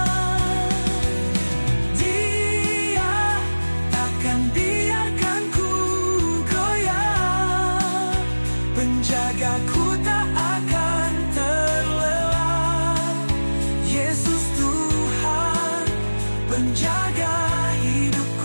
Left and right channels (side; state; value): both; inverted; correlation -1.00